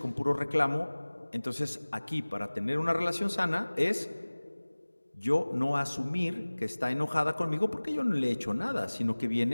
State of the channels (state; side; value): inverted; both; correlation -1.00